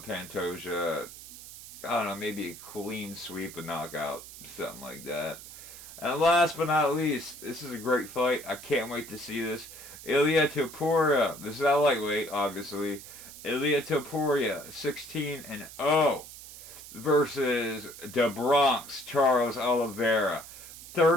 Pantoja. I don't know, maybe a clean sweep, a knockout, something like that. And last but not least, this is a great fight. I can't wait to see this. Ilia Topuria. This is a lightweight, obviously. Ilia Topuria, 16-0 versus the Bronx Charles Oliveira,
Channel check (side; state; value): right; noise; hiss, 15 dB below the sound